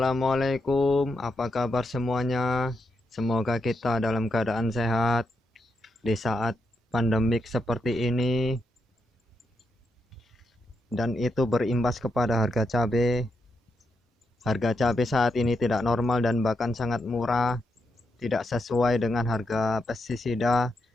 apa kabar semuanya? Semoga kita dalam keadaan sehat di saat pandemik seperti ini, dan itu berimbas kepada harga cabai. Harga cabai saat ini tidak normal dan bahkan sangat murah, tidak sesuai dengan harga pestisida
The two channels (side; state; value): both; normal; correlation 0.83